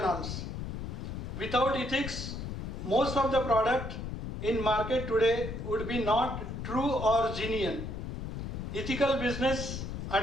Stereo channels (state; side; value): noise; left; rumble, 5 dB below the sound